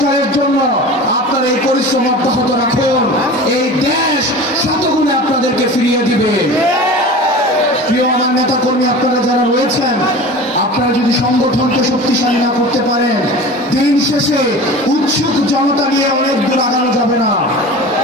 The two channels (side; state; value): both; normal; correlation 0.36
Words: জন্য আপনারা এই পরিশ্রম অব্যাহত রাখুন। এই দেশ শতগুণে আপনাদেরকে ফিরিয়ে দিবে। প্রিয় আমার নেতা কর্মী আপনারা যারা রয়েছেন, আপনারা যদি সংগঠনকে শক্তিশালী না করতে পারেন, দিন শেষে উৎসুক জনতা নিয়ে অনেক দূর আগানো যাবে না।